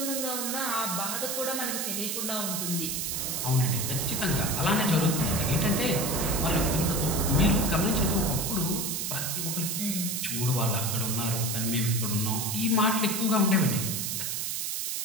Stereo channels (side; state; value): right; noise; hiss, 1 dB below the sound